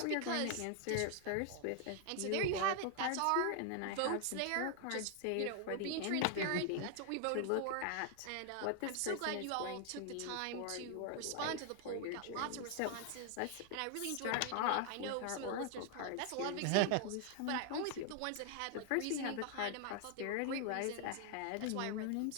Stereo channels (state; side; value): different; both; correlation 0.00